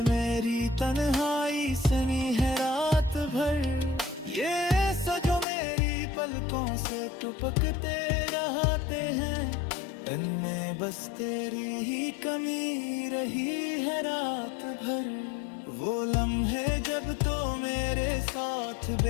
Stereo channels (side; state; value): right; drops out; at 5.5 s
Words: मेरी तन्हाई सुनी है रात भर। ये सजो मेरी पलकों से टपकते रहते हैं, इनमें बस तेरी ही कमी रही है रात भर। वो लम्हे जब तो मेरे साथ